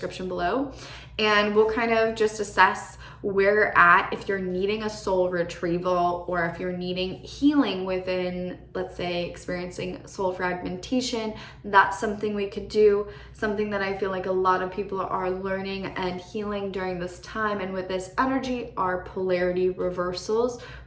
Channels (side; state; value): both; identical; correlation 1.00